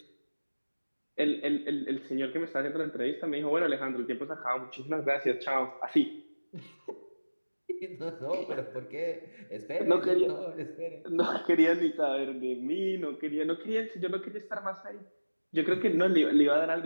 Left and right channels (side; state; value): both; inverted; correlation -1.00